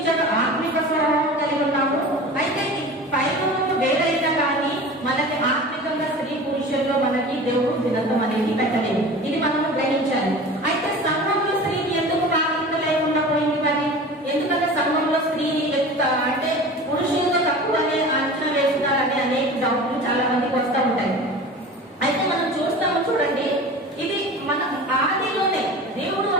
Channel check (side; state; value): both; normal; correlation 0.37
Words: ఆత్మిక స్వభావం కలిగి ఉన్నాము. అయితే పైన వేరైనా కానీ మనకి ఆత్మికంగా స్త్రీ పురుషుల్లో మనకి దేవుడు భిన్నత్వం అనేది పెట్టలేదు. ఇది మనము గ్రహించాలి. అయితే సంఘంలో స్త్రీకి ఎందుకు ప్రాధాన్యత లేకుండా పోయింది మరి? ఎందుకంటే సంఘంలో స్త్రీని అంటే పురుషులతో తక్కువ అనే అంచనా వేస్తున్నారని అనేక డౌట్లు చాలా మందికి వస్తూ ఉంటాయి. అయితే మనం చూస్తాము, చూడండి, ఇది మన ఆదిలోనే దేవుడు